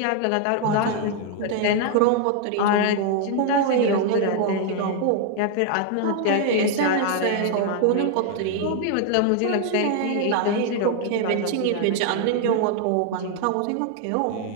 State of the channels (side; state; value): both; different; correlation 0.00